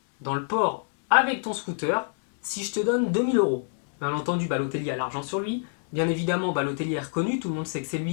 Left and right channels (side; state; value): right; silent; digital silence